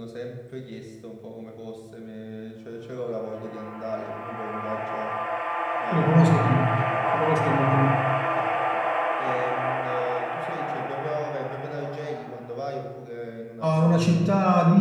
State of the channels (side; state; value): both; identical; correlation 1.00